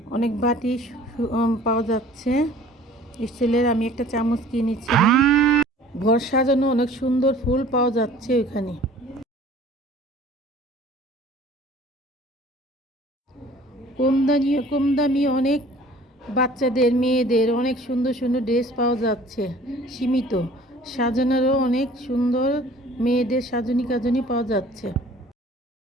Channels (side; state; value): both; normal; correlation 0.49